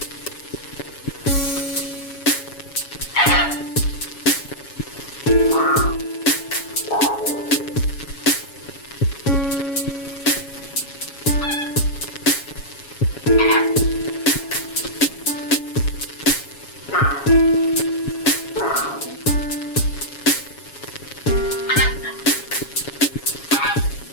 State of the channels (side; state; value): right; late; 7.2 ms